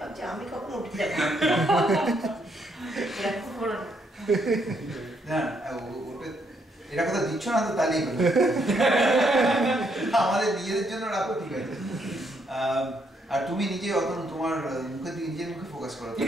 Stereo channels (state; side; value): normal; both; correlation 0.74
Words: আমি কখন উঠে যাবো এরকম করো না ওটা এটা কথা দিচ্ছ না তো তাহলেই হলো আমাদের নিজেদের জন্য রাখো ঠিক আছে আর তুমি নিজে অত তোমার মুখের দিকে নিজের মুখে ফোকাস করো